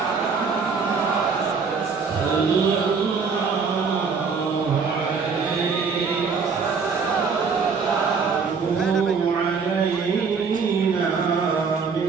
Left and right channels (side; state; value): left; quieter; 5.4 dB